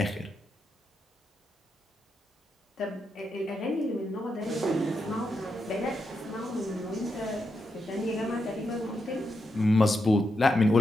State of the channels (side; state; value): both; normal; correlation 0.84